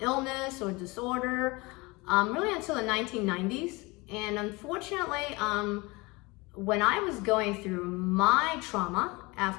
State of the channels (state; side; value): quieter; right; 24.5 dB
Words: illness or disorder, really until the 1990s. And unfortunately, when I was going through my trauma